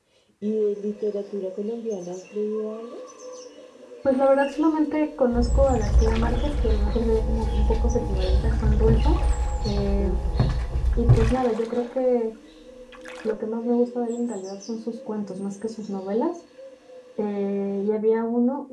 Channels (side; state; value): both; identical; correlation 1.00